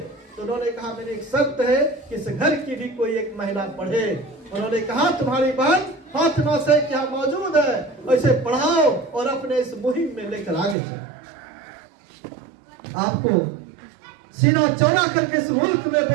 तो उन्होंने कहा, मेरी एक शर्त है कि इस घर की भी कोई एक महिला पढ़े। उन्होंने कहा, तुम्हारी बहन फातिमा शेख यहाँ मौजूद है, ऐसे पढ़ाओ और अपने इस मुहिम में लेकर आगे चलो। आपको सीना चौड़ा करके इस मुल्क में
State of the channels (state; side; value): drops out; left; at 10.8 s